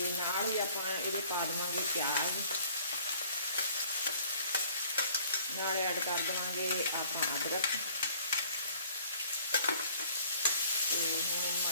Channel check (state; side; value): inverted; both; correlation -0.55